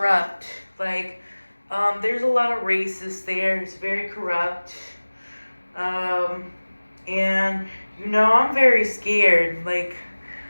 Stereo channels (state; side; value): inverted; both; correlation -1.00